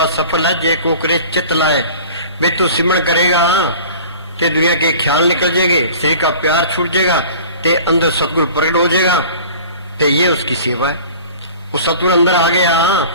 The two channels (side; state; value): both; inverted; correlation -0.43